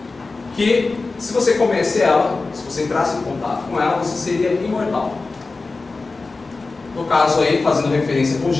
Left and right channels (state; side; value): quieter; right; 3.7 dB